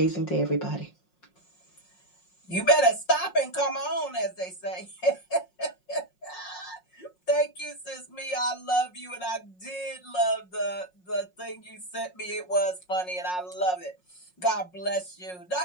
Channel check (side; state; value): right; late; 5.5 ms